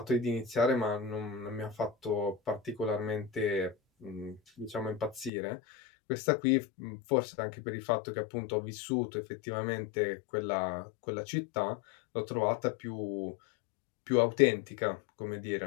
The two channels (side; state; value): right; drops out; at 5.3 s